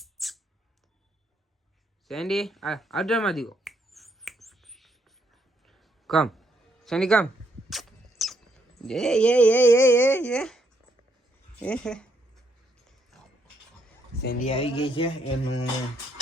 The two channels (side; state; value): both; normal; correlation 0.73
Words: સેન્ડી આઉટડોરમાં દીવો કમ. સેન્ડી કમ. સેન્ડી આવી ગઈ છે.